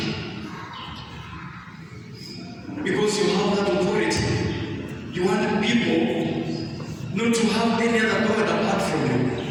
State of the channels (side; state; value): both; identical; correlation 1.00